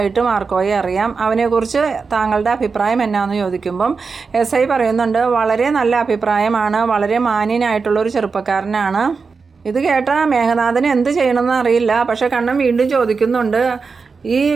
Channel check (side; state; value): left; quieter; 4.9 dB